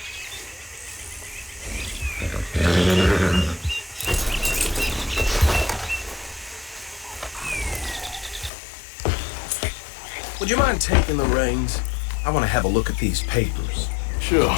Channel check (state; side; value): drops out; right; at 8.5 s